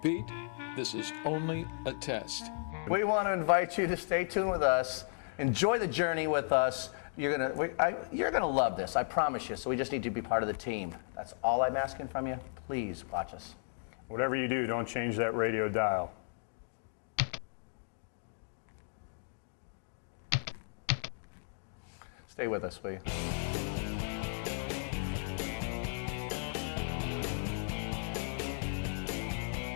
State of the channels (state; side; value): silent; right; digital silence